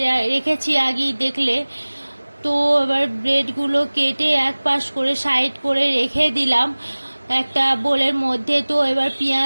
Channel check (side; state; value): both; inverted; correlation -1.00